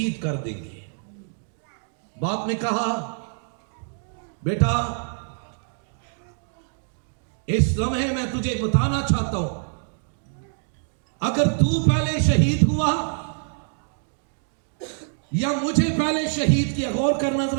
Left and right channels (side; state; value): left; silent; digital silence